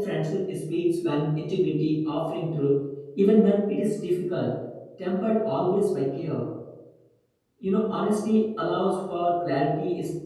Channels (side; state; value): both; identical; correlation 1.00